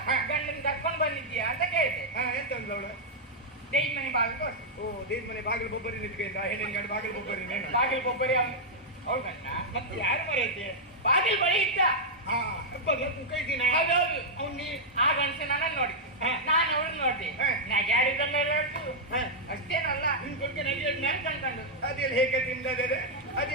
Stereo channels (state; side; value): normal; both; correlation -0.05